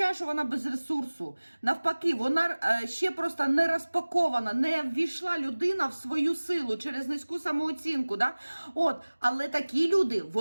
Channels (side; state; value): both; inverted; correlation -1.00